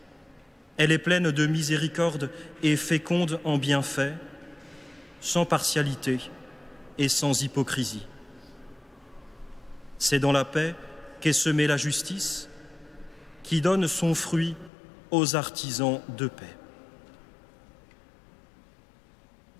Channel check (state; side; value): drops out; right; at 14.7 s